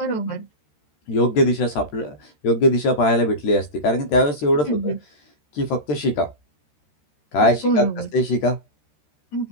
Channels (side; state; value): right; late; 13 ms